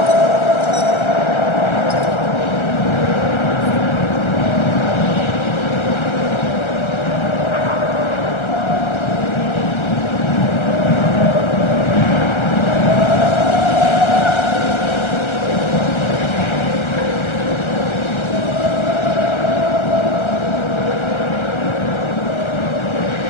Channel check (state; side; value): late; right; 1.3 ms